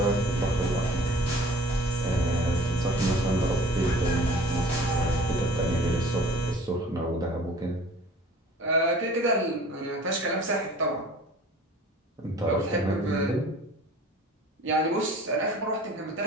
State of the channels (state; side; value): normal; both; correlation 0.47